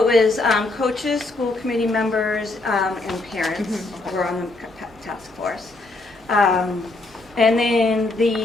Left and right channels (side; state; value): right; quieter; 3.1 dB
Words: it was coaches, school committee members, and parents were on the task force. And then